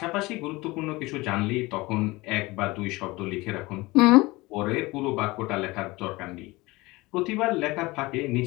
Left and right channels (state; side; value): quieter; right; 21.7 dB